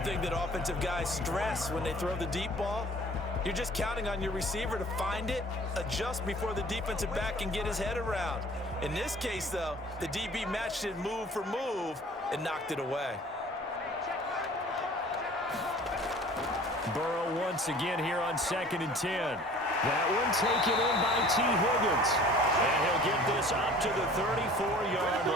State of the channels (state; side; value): normal; both; correlation 0.49